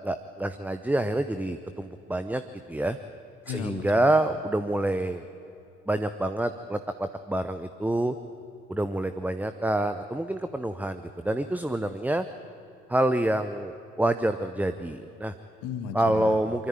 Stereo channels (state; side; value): normal; both; correlation 0.86